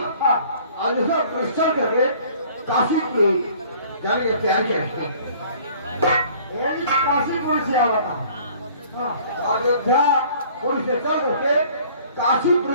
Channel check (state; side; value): inverted; both; correlation -0.53